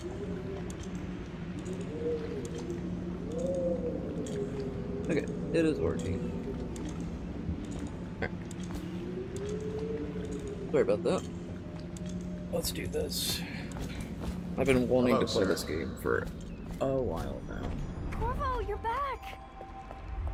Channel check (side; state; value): both; identical; correlation 1.00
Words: Okay, it is working. Alright. Sorry about that. Let's do this. I've been wanting Hello, to play sir. this game for a while now. Corvo, you're back!